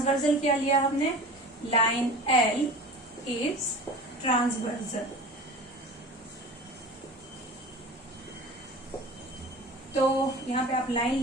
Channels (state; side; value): normal; both; correlation 0.37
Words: क्या लिया हमने? Line L is transversal. तो यहाँ पे आप लाइन